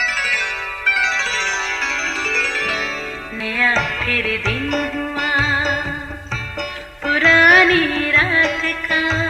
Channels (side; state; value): both; identical; correlation 1.00